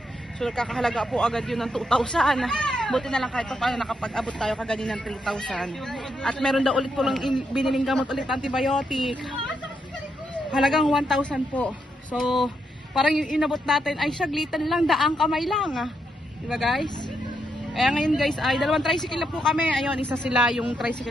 So, nakakahalaga po agad yun ng 2,000. Buti na lang kahit pa paano nakapag-abot tayo kaganin ng 3,000. At meron daw ulit po lang biniling gamot ulit antibiotic. Halagang 1,000 po. So, parang yung inabot natin ay saglitan lang, daang kamay lang. Diba guys? Kaya ngayon guys, ay dalawang tricycle na po kami. Ayun, isa sila yung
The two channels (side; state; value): both; normal; correlation 0.80